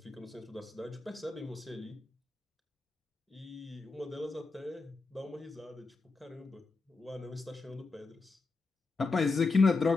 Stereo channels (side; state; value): right; quieter; 3.8 dB